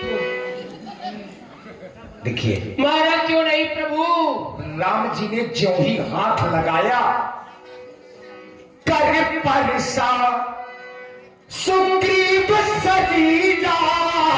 देखिए मारा क्यों नहीं प्रभु? राम जी ने ज्यों ही हाथ लगाया, कर परसा सुग्रीव सजीजा,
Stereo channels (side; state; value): both; identical; correlation 1.00